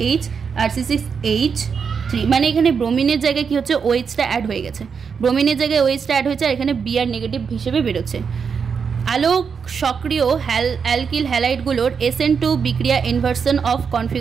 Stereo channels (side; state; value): left; quieter; 6.2 dB